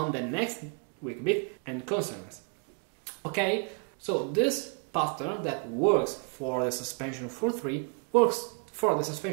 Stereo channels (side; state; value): left; quieter; 37.3 dB